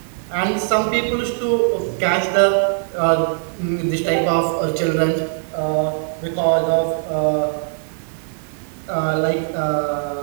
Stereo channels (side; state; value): left; silent; 64 dB below the other